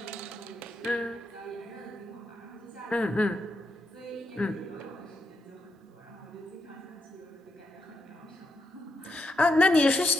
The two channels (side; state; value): both; normal; correlation 0.82